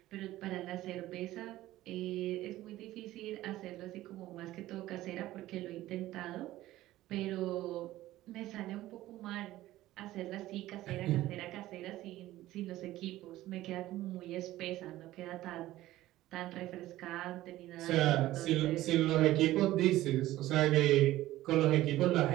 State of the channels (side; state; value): left; quieter; 15.7 dB